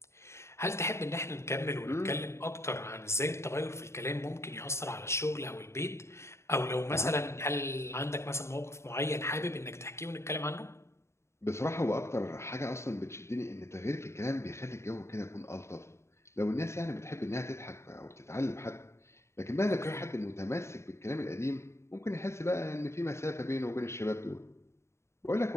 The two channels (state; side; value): late; right; 0.13 ms